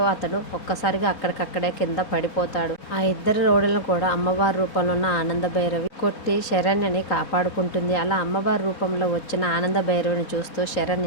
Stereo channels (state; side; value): late; right; 4.2 ms